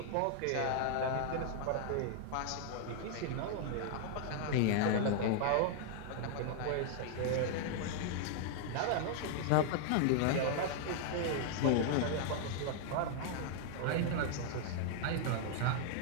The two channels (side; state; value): both; different; correlation 0.00